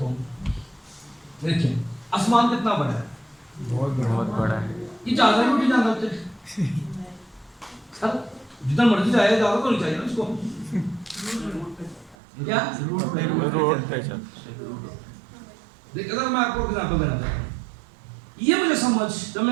ہوں. دیکھیں آسمان کتنا بڑا ہے، بہت بڑا ہے. یہ جانا ہے نہیں جانا ہوتے سر، جتنا مرضی جائے جانا تو نہیں چاہیے نا اس کو. کیا روڈ پہ چل. دیکھ اگر میں آپ کو ایگزامپل دینا چاہتا ہوں، یہ مجھے سمجھ جب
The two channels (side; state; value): left; drops out; at 12.2 s